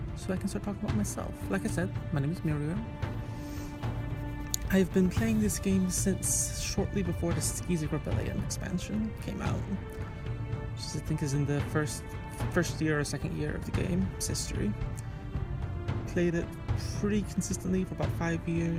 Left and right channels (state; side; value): identical; both; correlation 1.00